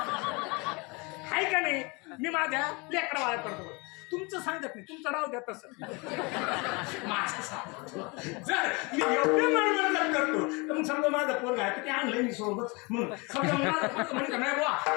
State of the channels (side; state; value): right; quieter; 28.0 dB